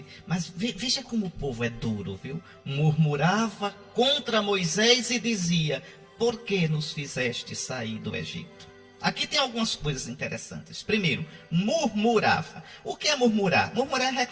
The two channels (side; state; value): both; identical; correlation 1.00